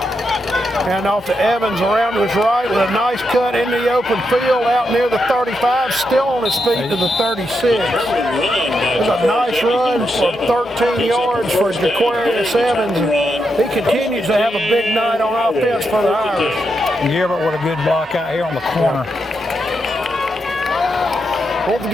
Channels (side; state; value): both; normal; correlation 0.83